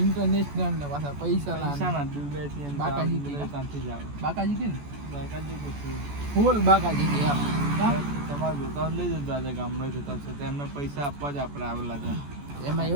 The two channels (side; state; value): left; late; 14 ms